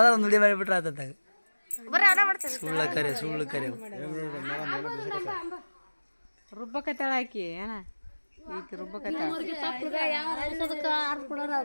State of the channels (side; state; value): both; inverted; correlation -1.00